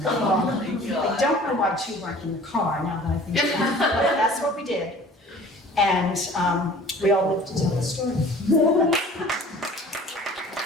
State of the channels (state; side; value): normal; both; correlation 0.48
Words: Oh my God. I don't know why 2 weren't in the car, now that I think about it, but that's what we did. And we all lived to tell the story.